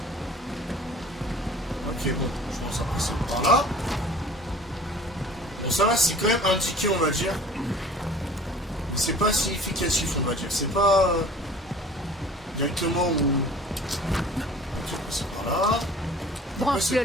Ok, bon, je pense après c'est par là. Bon, ça va, c'est quand même indiqué, on va dire. Mais c'est pas significatif, on va dire. C'est pas directement où... Ok, après c'est par là. Et après c'est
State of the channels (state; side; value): normal; both; correlation 0.47